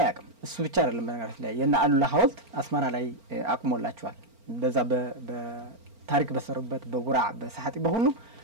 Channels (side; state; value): left; late; 4.4 ms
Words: ያቅም እሱ ብቻ አይደለም በነገራችን ላይ የና አሉላ ሐውልት አስመራ ላይ አቁሞላቸዋል በዛ በታሪክ በሰሩበት በጉራ በሳሐቲ በሁሉ